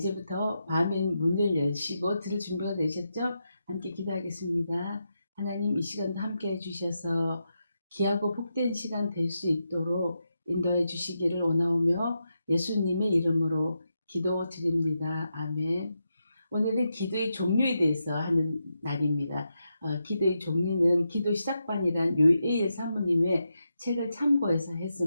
마음의 문을 여시고 들을 준비가 되셨죠? 함께 기도하겠습니다. 하나님, 이 시간도 함께 해주셔서 귀하고 복된 시간 될 수 있도록 인도해 주시기를 원하오며 예수님의 이름으로 기도드립니다. 아멘. 오늘은 기도의 종류에 대해서 하는 날입니다. 기도의 종류는 기도 시작반이란 요에일 사모님의 책을 참고해서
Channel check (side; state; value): both; inverted; correlation -0.86